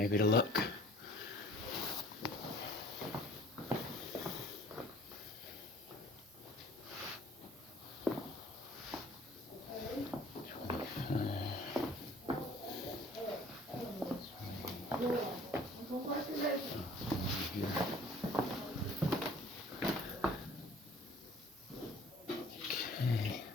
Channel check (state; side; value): noise; right; hiss, 26 dB below the sound